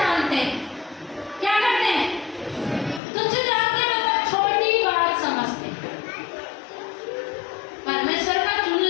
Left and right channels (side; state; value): right; drops out; at 3.0 s